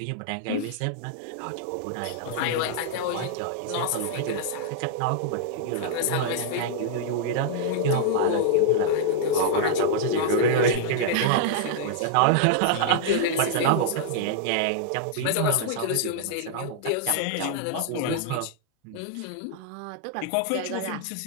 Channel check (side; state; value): both; different; correlation -0.01